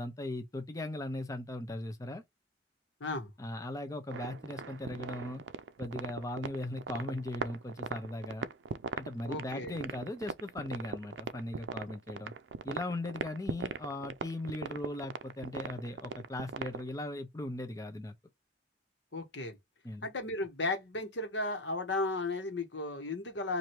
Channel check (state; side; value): normal; both; correlation 0.33